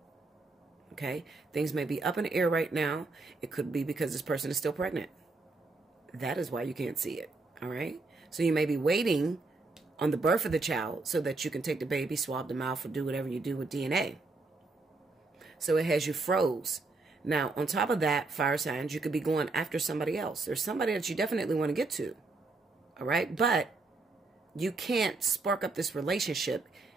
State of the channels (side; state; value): left; quieter; 3.5 dB